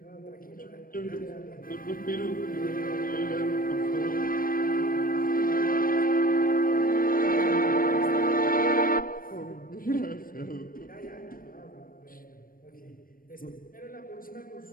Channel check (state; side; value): late; right; 0.41 ms